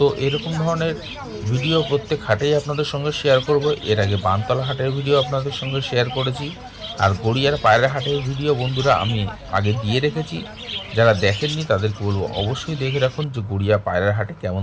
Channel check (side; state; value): both; identical; correlation 1.00